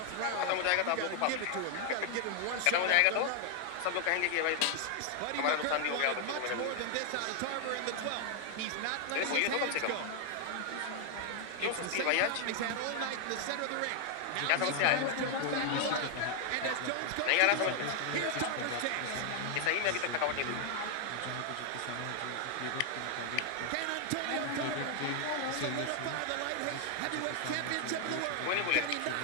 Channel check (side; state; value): both; different; correlation 0.00